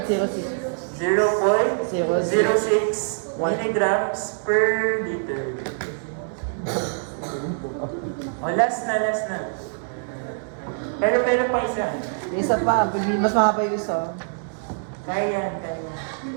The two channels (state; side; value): silent; left; 62 dB below the other